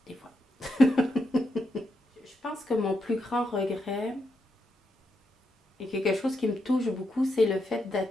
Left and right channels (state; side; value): normal; both; correlation 0.82